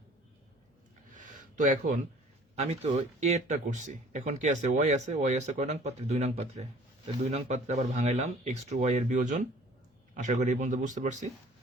তো এখন আমি তো এরটা করছি, এখন কি আছে? ওয়াই আছে। ওয়াই আছে কয় নং পাত্রে? 2 নং পাত্রে। 2 নং পাত্রে আবার ভাঙাইলাম x2 y এর বিয়োজন। আশা করি এই পর্যন্ত বুঝতে পারছি।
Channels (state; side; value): normal; both; correlation 0.51